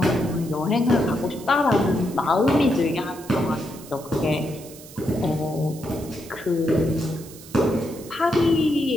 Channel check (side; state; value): right; noise; hiss, 18 dB below the sound